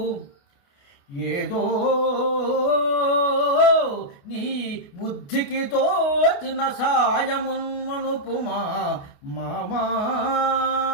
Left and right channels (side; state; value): right; late; 29 ms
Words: ఏదో నీ బుద్ధికి తోచిన సాయమున్మనుపుమా మామా